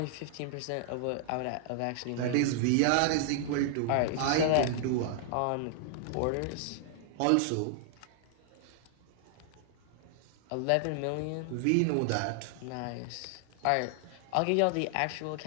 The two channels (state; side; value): different; both; correlation -0.01